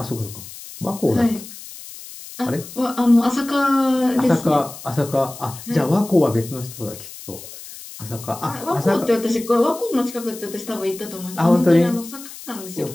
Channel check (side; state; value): left; noise; hiss, 14 dB below the sound